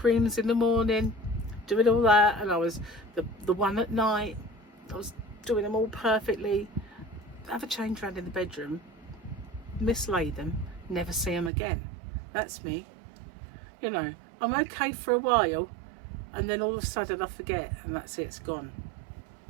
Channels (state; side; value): drops out; left; at 11.5 s